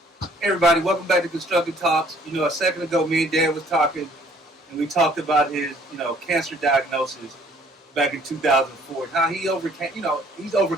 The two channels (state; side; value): normal; both; correlation 0.59